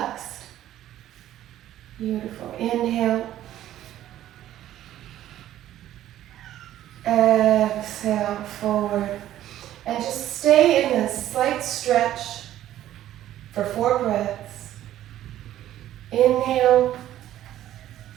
Beautiful. Inhale. Exhale, forward. And just stay in this slight stretch for 4 breaths. Inhale,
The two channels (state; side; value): quieter; left; 12.8 dB